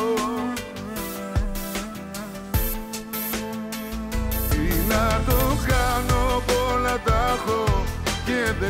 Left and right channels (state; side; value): identical; both; correlation 1.00